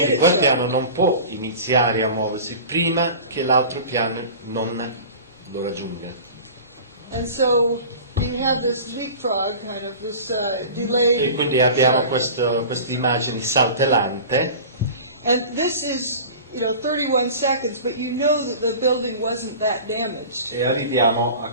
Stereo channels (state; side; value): inverted; both; correlation -0.38